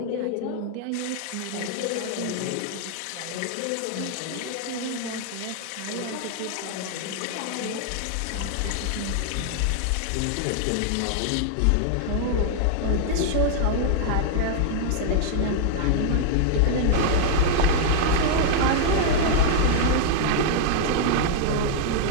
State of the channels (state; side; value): different; both; correlation -0.01